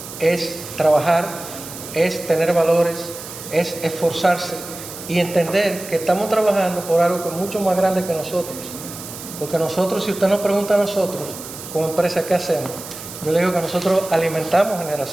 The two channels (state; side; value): noise; right; hiss, 12 dB below the sound